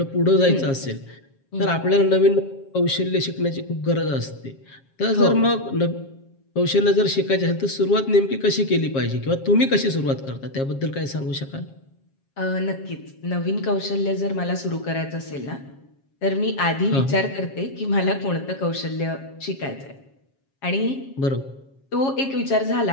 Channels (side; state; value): right; late; 7.4 ms